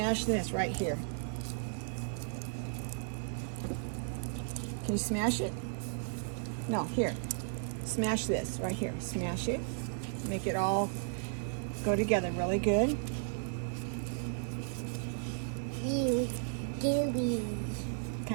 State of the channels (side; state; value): left; silent; digital silence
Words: this right here. Can you smash it? No, here. Smash this right here. Smash it. Make it all go together really good. Gooey.